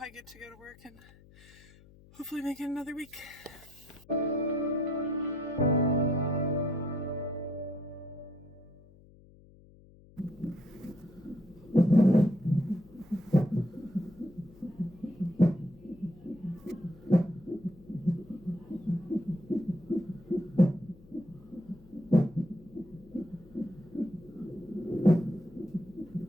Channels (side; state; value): left; noise; hum, 24 dB below the sound